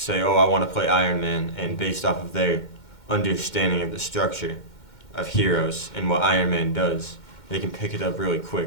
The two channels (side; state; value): right; late; 2.1 ms